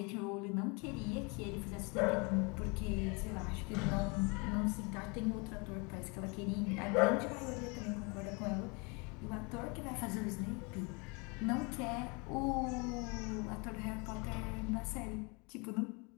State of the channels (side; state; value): right; quieter; 30.1 dB